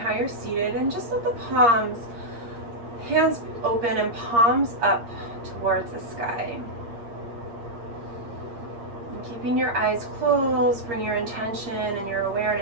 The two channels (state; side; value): late; left; 8.6 ms